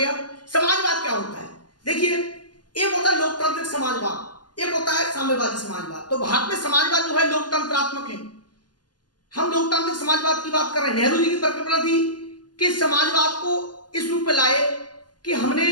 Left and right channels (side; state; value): right; late; 0.70 ms